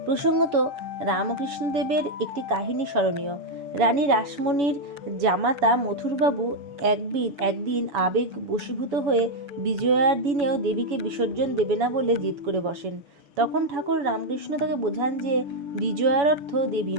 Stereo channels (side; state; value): left; late; 7.0 ms